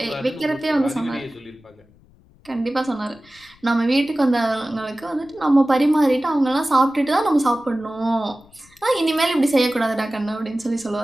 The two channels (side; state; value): left; noise; rumble, 29 dB below the sound